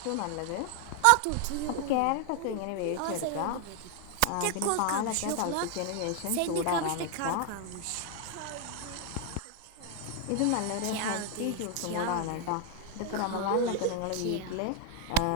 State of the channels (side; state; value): both; different; correlation 0.00